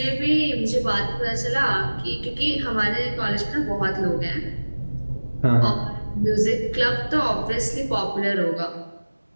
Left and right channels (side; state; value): both; inverted; correlation -1.00